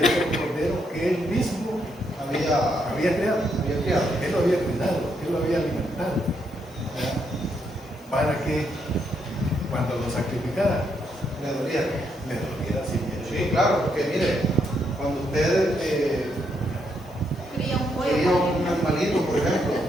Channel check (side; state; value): both; normal; correlation 0.77